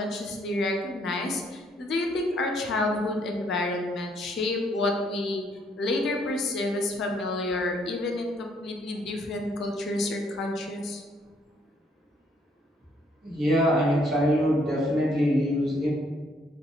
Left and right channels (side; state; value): both; normal; correlation 0.68